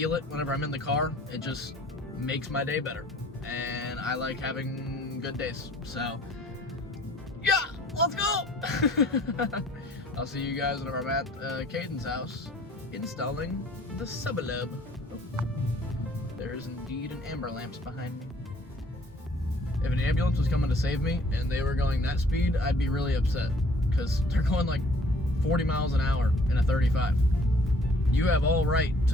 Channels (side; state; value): both; normal; correlation 0.56